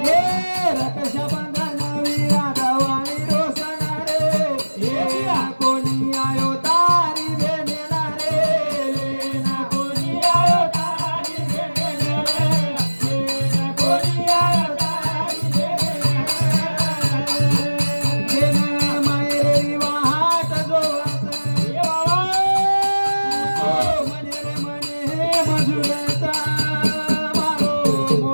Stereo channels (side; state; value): both; inverted; correlation -1.00